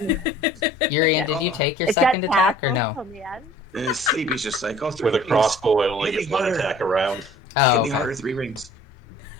Urian, did you take your It's second got attack or tassels no? on the end. In his sleep, he's just like, oh, 3 With a rings. crossbow, I only Hit get me one harder. attack around. Oh, Hit me okay. harder, 3 rings.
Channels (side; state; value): both; normal; correlation 0.50